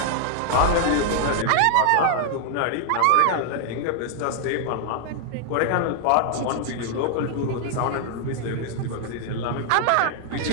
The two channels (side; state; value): both; different; correlation 0.00